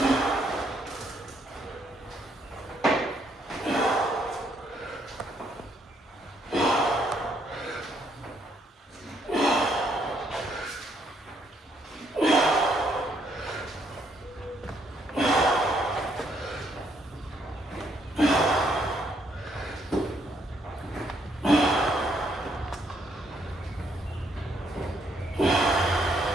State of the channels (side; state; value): both; normal; correlation 0.71